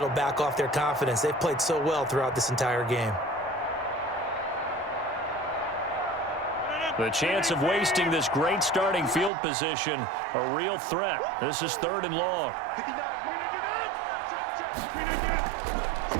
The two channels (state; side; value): drops out; left; at 9.3 s